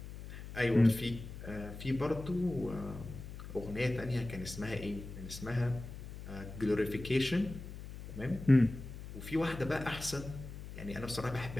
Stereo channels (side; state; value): left; noise; hum, 11 dB below the sound